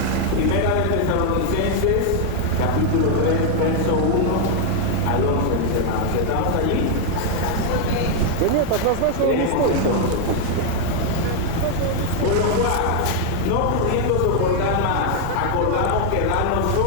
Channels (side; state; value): both; different; correlation 0.00